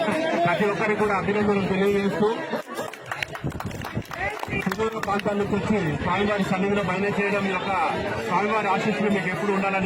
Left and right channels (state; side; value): identical; both; correlation 1.00